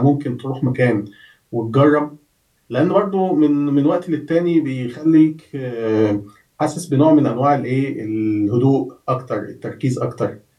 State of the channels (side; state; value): both; identical; correlation 1.00